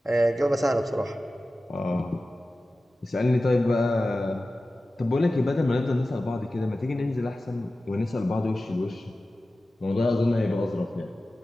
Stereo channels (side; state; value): both; normal; correlation 0.95